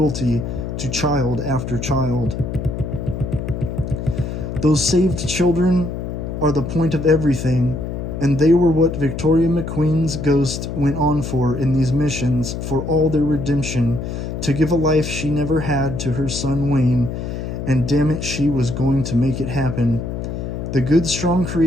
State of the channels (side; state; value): left; noise; hum, 5 dB below the sound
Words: to child after child. Those saved children are the point of everything, and they were what Victoria McQueen's ghost went on for in these missions, for all their redemption, to give a life she never had to her son Wayne, and damn it, she was going to make it happen. The good, strong,